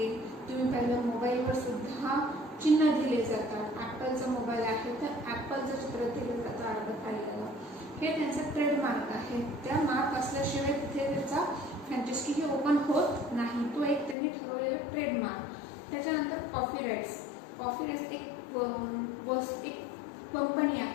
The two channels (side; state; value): right; drops out; at 14.2 s